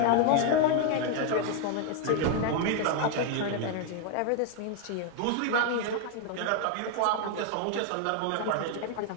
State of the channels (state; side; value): different; both; correlation 0.00